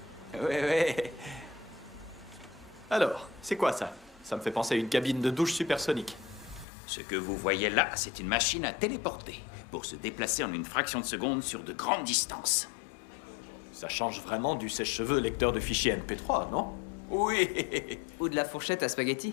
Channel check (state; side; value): drops out; right; at 6.7 s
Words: Oui. Alors, c'est quoi ça? Ça me fait penser à une cabine de douche supersonique. Ce que vous voyez là, c'est une machine à téléporter pour se déplacer en une fraction de seconde sur de grandes distances. Ça change vraiment du sèche-cheveux lecteur de fichiers MP3, non? Oui. Ou de la fourchette à spaghetti.